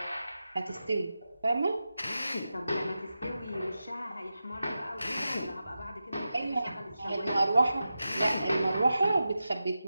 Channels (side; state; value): both; inverted; correlation -0.92